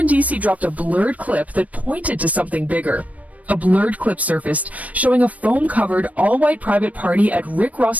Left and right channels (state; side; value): late; left; 0.070 ms